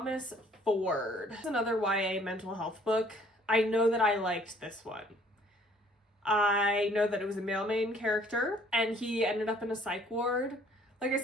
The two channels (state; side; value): normal; both; correlation 0.58